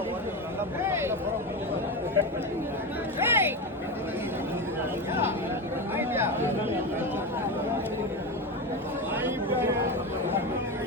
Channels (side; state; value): both; normal; correlation 0.18